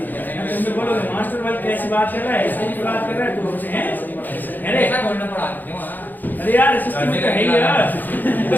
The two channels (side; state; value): right; late; 0.086 ms